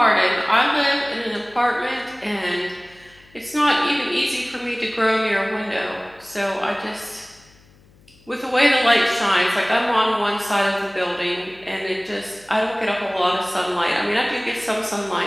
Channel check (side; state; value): left; noise; hum, 28 dB below the sound